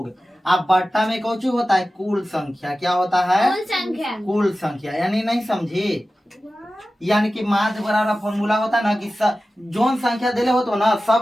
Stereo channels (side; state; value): both; normal; correlation 0.95